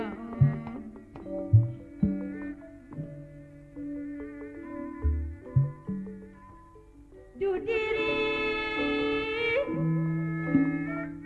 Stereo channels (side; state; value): both; identical; correlation 1.00